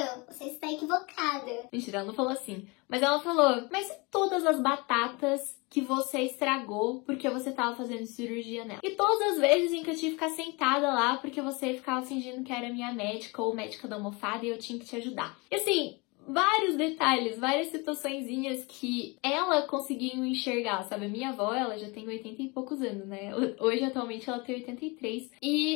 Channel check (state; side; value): quieter; right; 27.5 dB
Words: você está equivocada. Mentira, ela não falou assim. Mas ela falou, mas e todas as batatas que você estragou porque você tava fazendo cirurgia nela? E todas as vezes em que eu tive que ficar sentada lá porque você ficava fingindo que era minha médica ou médica da almofada e eu tinha que te ajudar. E assim, vários detalhes, várias situaçõezinhas que ela conseguiu enxergar, sabe? A minha avó, ela já tem 80 e poucos anos, né? Hoje, atualmente, ela tem 83.